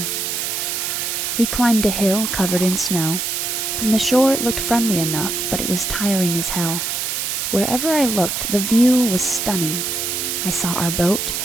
We climbed a hill covered in snow. From the shore it looked friendly enough, but it was tiring as hell. Wherever I looked, the view was stunning. I saw our boat,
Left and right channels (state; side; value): noise; right; hiss, 2 dB below the sound